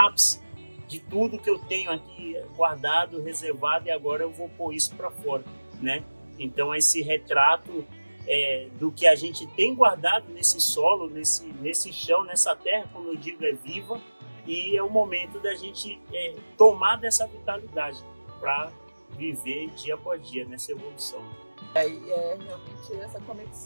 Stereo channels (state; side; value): inverted; both; correlation -1.00